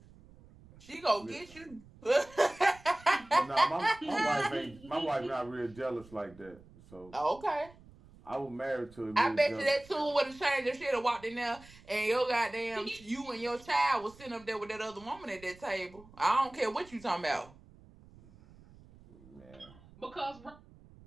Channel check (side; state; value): right; noise; rumble, 23 dB below the sound